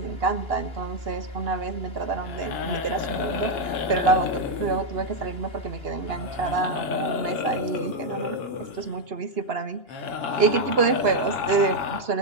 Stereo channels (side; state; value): left; late; 2.9 ms